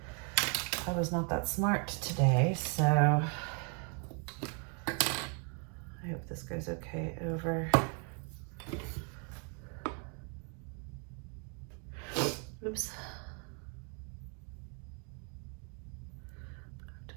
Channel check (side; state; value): left; quieter; 38.3 dB